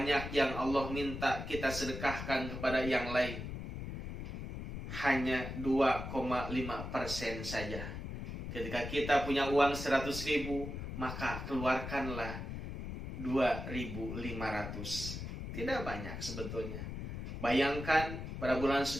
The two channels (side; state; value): left; noise; rumble, 6 dB below the sound